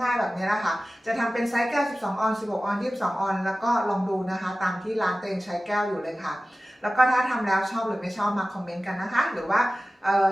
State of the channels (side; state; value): both; normal; correlation 0.96